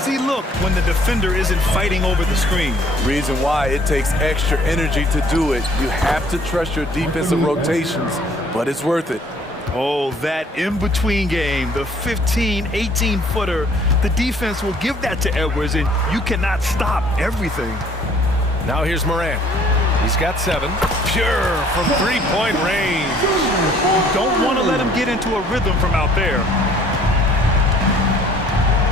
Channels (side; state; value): both; normal; correlation 0.58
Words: look when the defender isn't fighting over the screen. Reason why it takes extra energy to do it. You have to trust your defensive rotations, but it's worth it. Oh, that in-between game, the 15, 18-footer, the defense will give that to Edwards, and you cannot stop everything. Now here's Morant. He's got 7. Pure from 3-point range. Don't want to let him get into a rhythm from out there.